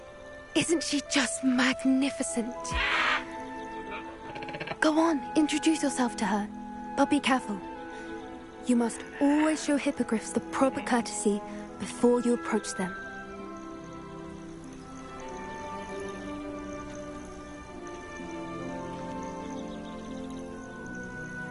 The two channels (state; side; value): identical; both; correlation 1.00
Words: Isn't she just magnificent? Go on, introduce yourself to her. But be careful. You must always show hippogriffs the proper courtesy before you approach them.